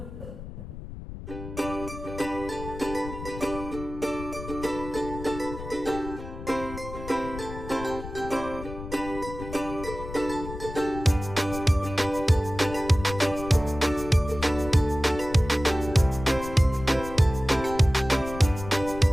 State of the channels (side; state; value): left; noise; rumble, 11 dB below the sound